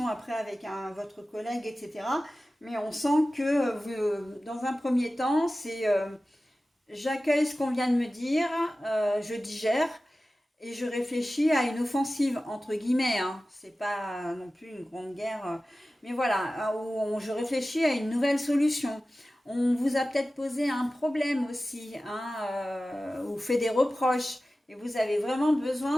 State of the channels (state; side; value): normal; both; correlation 0.96